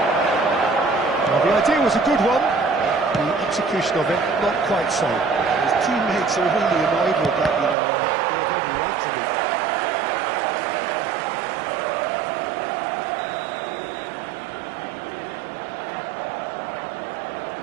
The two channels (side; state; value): left; drops out; at 7.8 s